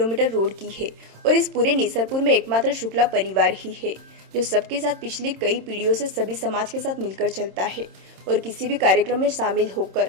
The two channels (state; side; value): late; left; 26 ms